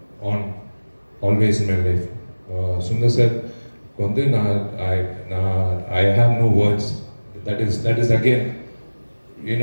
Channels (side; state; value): both; inverted; correlation -1.00